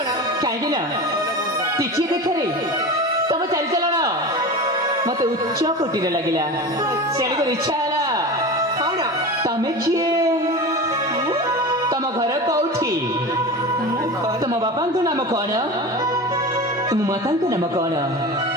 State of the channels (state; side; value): normal; both; correlation 0.30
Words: कहीं ना टिके देखे तुम चली चलन मत उच्च कोटि लगिला से इच्छा है कौन तमें किए तुम घर कौटी तुम बापा नाम कौन तुम माता नाम कौन